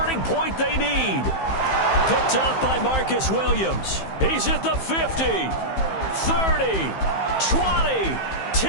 point they need. Picked off by Marcus Williams. He's at the 50, 30, 20,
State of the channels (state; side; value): late; right; 15 ms